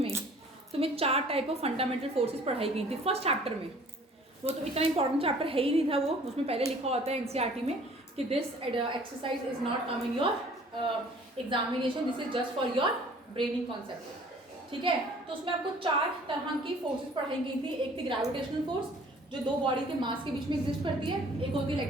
में तुम्हें 4 टाइप ऑफ फंडामेंटल फोर्सेस पढ़ाई गई थी फर्स्ट चैप्टर में. वो तो इतना इंपॉर्टेंट चैप्टर है ही नहीं था वो, उसमें पहले लिखा होता है एनसीईआरटी में कि this exercise is not come in your examination, this is just for your braining concept, ठीक है. तो उसमें आपको 4 तरह की फोर्सेस पढ़ाई गई थी. एक थी ग्रेविटेशनल फोर्स, जो 2 बॉडी के मास के बीच में एग्जिस्ट करती है. एक होती है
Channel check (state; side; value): normal; both; correlation 0.52